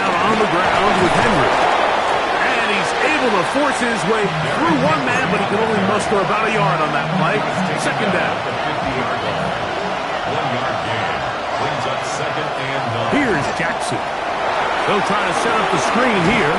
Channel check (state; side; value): identical; both; correlation 1.00